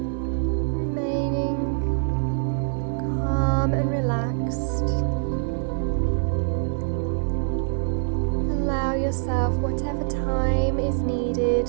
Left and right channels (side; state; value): left; silent; 62 dB below the other